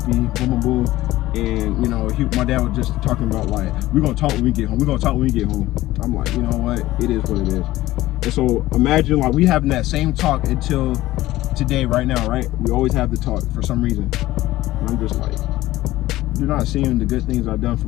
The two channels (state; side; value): quieter; right; 16.5 dB